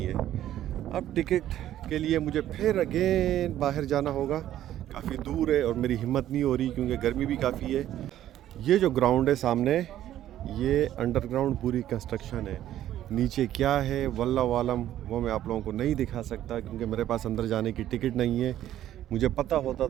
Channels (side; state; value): left; quieter; 12.3 dB